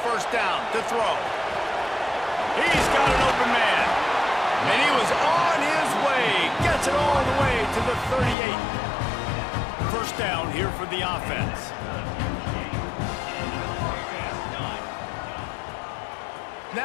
first down to throw. He's got an open man. And he was on his way. Gets it all the way to the 38. First down here for the offense.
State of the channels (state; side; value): drops out; right; at 8.3 s